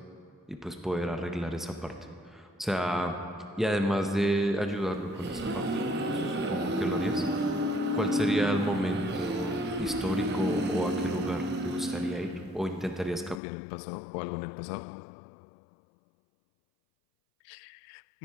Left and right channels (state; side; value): drops out; right; at 13.4 s